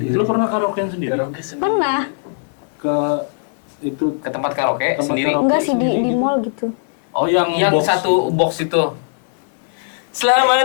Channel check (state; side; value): silent; right; 57 dB below the other